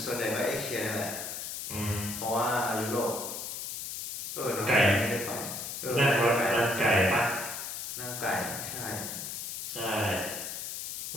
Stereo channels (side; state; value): left; noise; hiss, 6 dB below the sound